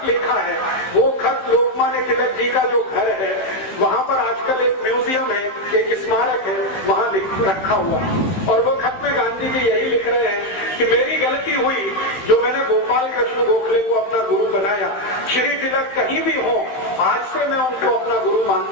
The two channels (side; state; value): right; late; 15 ms